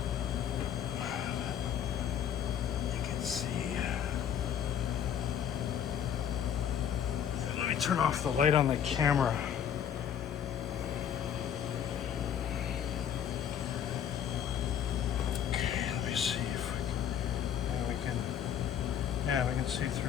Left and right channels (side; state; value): right; quieter; 9.1 dB